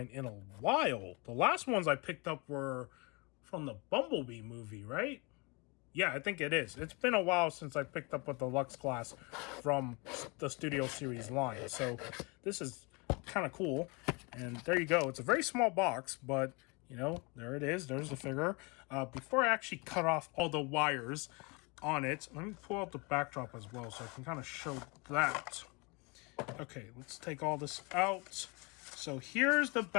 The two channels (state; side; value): quieter; right; 29.0 dB